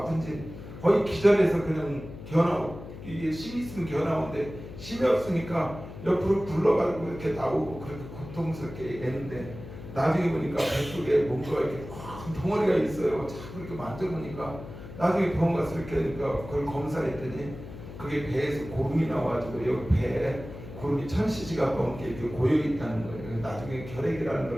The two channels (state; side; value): noise; left; hum, 13 dB below the sound